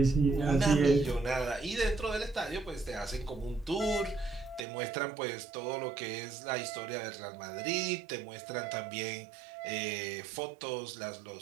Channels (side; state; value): left; drops out; at 4.7 s